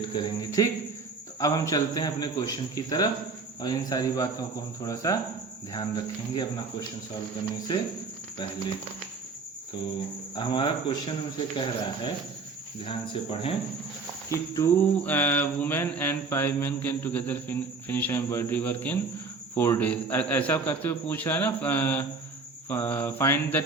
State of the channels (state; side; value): quieter; left; 4.2 dB